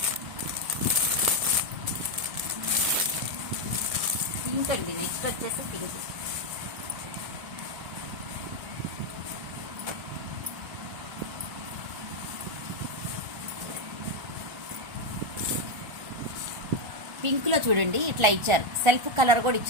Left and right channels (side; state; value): left; late; 1.4 ms